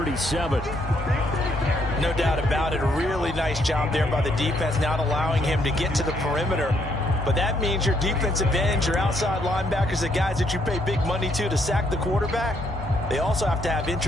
No doubt about it. A really nice job there by the defense, not allowing him to get to the perimeter. But that means your defensive ends, your outside linebackers, the guys that you pay big money to sack the quarterback, they also have to have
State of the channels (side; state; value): both; normal; correlation 0.72